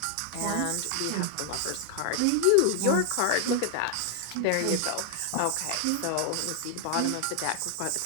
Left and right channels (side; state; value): both; different; correlation 0.00